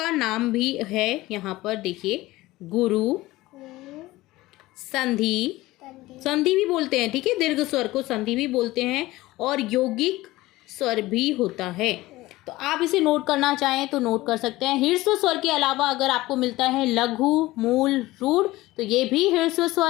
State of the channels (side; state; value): right; quieter; 18.4 dB